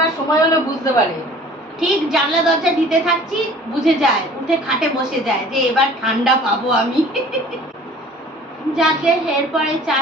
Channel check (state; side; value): normal; both; correlation 0.48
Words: সময় হলে বুঝতে পারে, ঠিক জানলা দরজা দিতে থাকছি বুঝে যায়, উঠে খাটে বসে যায় যে এবার ঠান্ডা পাবো আমি। যাকে এরপরে